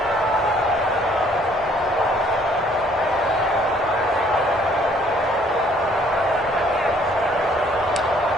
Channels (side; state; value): both; normal; correlation 0.61